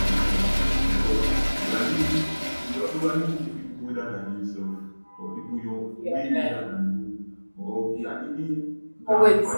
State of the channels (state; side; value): inverted; both; correlation -1.00